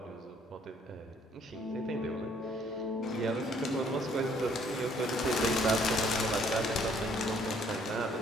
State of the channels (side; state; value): both; normal; correlation 0.63